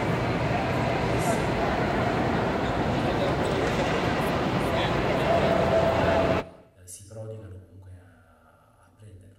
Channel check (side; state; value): both; identical; correlation 1.00